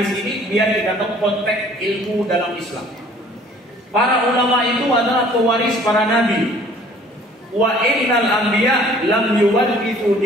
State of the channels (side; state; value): both; normal; correlation 0.54